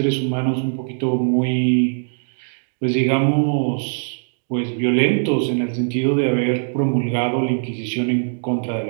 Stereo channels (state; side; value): silent; left; digital silence